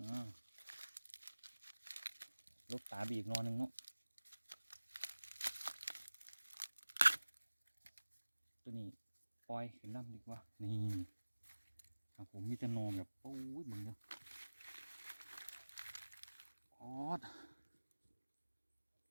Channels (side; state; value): both; inverted; correlation -1.00